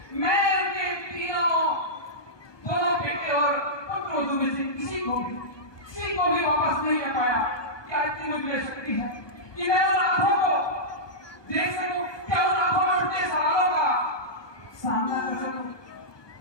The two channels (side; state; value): right; late; 1.2 ms